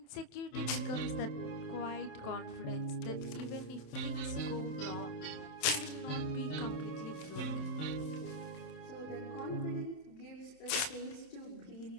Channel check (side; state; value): right; late; 27 ms